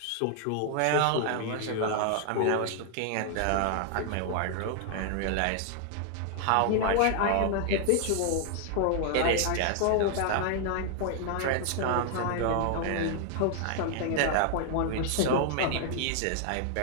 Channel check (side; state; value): both; different; correlation 0.00